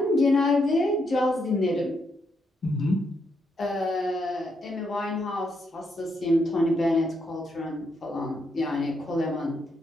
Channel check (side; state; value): both; normal; correlation 0.79